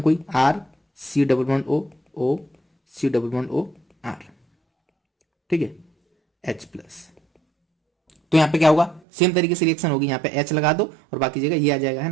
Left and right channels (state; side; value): drops out; left; at 9.0 s